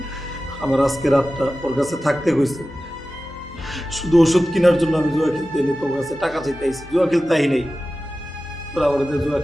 আমার আজকে রাতটা ওর কাছে থাকতে হয়েছে শুধু ওষুধ কেনার জন্য। আমি জুয়া খেলতে এনে তোর কাছে টাকা চাইতে আইছি, জুয়া খেলতে আই নেই। তোরা আমার জুয়া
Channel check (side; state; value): both; normal; correlation 0.95